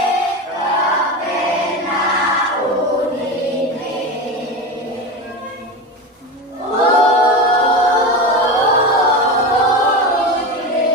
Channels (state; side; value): normal; both; correlation 0.22